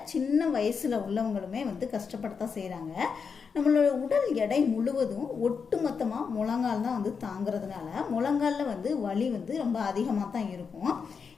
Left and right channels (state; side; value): quieter; right; 5.8 dB